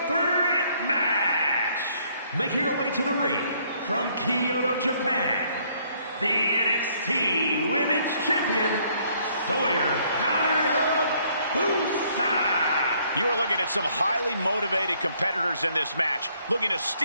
threat match. Making her way to the ring from Kyoto, Japan, the NXT Women's Champion, Sawyer Hayabusa. You are looking at some highly motivated competitors in this match, looking to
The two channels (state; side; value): inverted; both; correlation -0.66